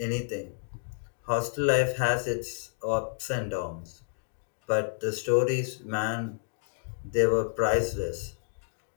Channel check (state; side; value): silent; right; digital silence